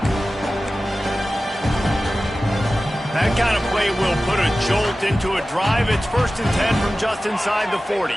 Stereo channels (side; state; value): both; normal; correlation 0.95